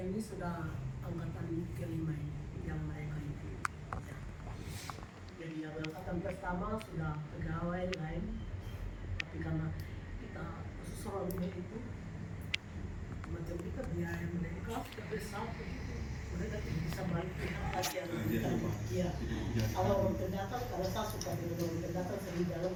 sudah angkatan ke-5 ini, yang mereka itu. Ya. Jadi yang angkatan pertama sudah pegawai lain, tapi karena kita khusus orangnya itu, macam kita biaya mereka sudah besar, mereka tidak bisa balik lagi yang kita. Ya. Kalau orang pendatang, karena saya suka dengan orang pendatang, saya di dalam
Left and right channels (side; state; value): both; identical; correlation 1.00